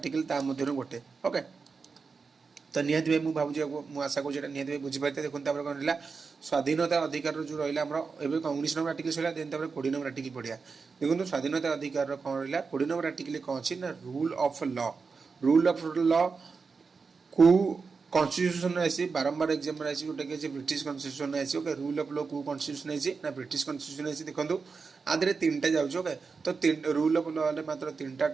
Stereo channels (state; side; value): quieter; left; 4.9 dB